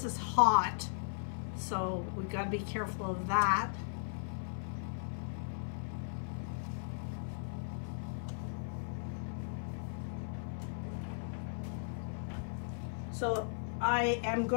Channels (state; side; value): silent; right; 53 dB below the other